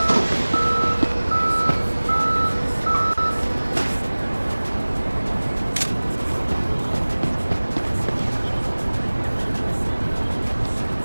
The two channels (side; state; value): both; inverted; correlation -1.00